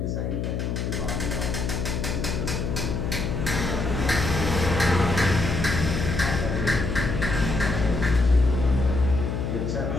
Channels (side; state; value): left; noise; hum, 1 dB below the sound